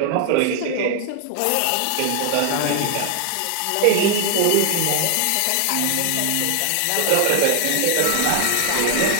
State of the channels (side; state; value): both; different; correlation 0.00